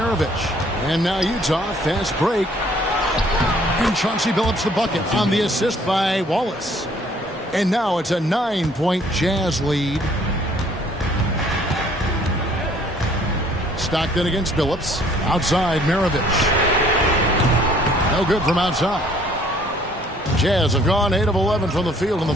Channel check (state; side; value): normal; both; correlation 0.59